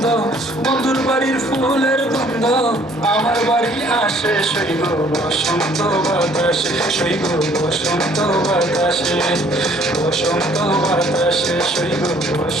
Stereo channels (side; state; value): both; normal; correlation 0.59